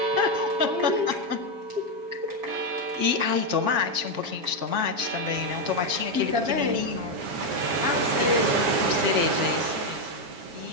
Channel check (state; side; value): late; left; 7.3 ms